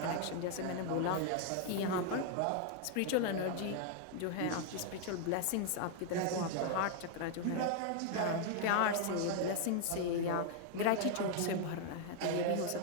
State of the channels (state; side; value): different; both; correlation 0.00